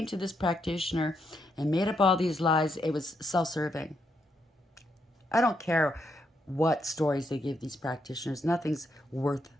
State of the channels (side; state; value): both; normal; correlation 0.79